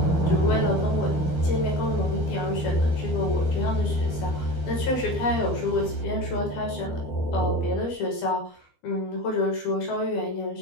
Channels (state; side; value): late; right; 12 ms